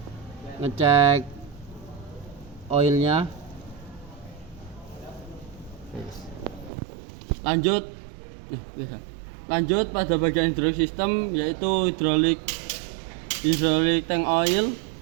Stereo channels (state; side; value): drops out; left; at 6.7 s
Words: oilnya. Lanjut pada bagian hydraulic system, yaitu hidrolik tank oil.